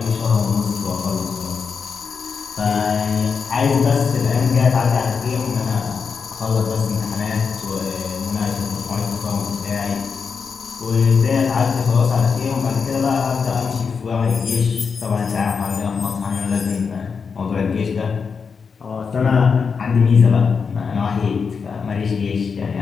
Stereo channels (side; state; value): right; quieter; 5.7 dB